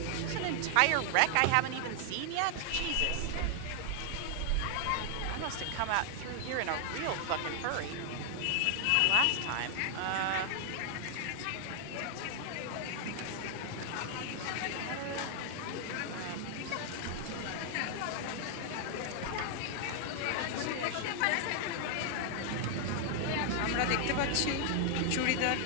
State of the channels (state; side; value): different; both; correlation 0.00